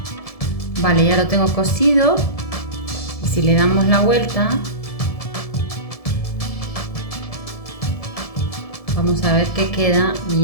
Vale, ya lo tengo cosido, y si le damos la vuelta vamos a ver que queda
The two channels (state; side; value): late; right; 1.7 ms